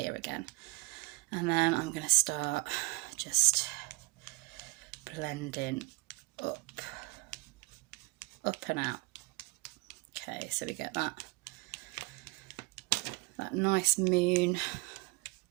again. And then I'm going to start just blending up and out. Okay, so we get that nice moon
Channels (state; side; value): quieter; left; 25.3 dB